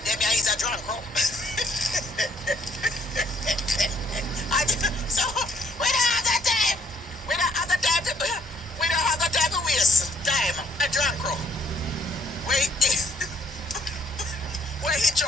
Them here is a drunk crow. So we don't have that time. We don't have the time to waste time. A drunk crow. Wait.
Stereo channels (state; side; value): normal; both; correlation 0.65